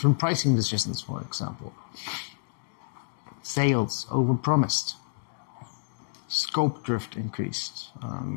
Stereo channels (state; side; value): silent; right; digital silence